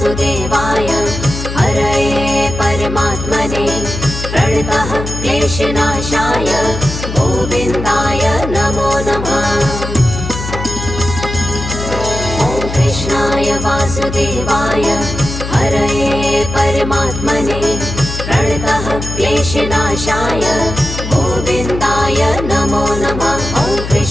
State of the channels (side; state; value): left; noise; hum, 7 dB below the sound